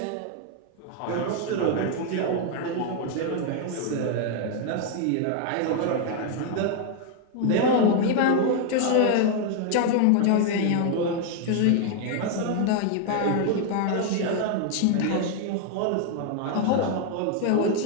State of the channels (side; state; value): both; different; correlation 0.00